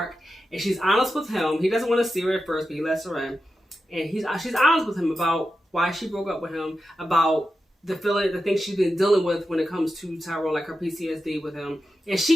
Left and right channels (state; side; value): normal; both; correlation 0.90